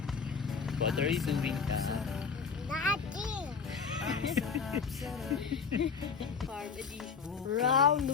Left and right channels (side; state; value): right; quieter; 5.7 dB